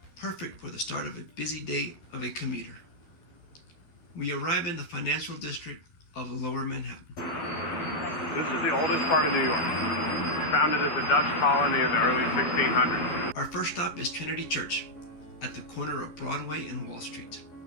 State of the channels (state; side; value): late; right; 12 ms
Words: perfect for the start of a busy day of a commuter. We arrive in the financial district of Lower Manhattan. This is the oldest part of New York, founded as a Dutch colony in the early 1600s. Our first stop is Trinity Church, at the corner of Broadway and Wall Street.